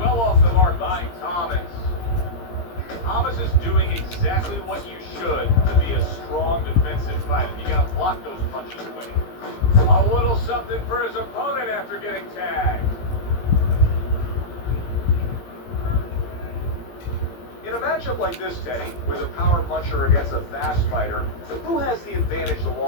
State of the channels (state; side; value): late; right; 17 ms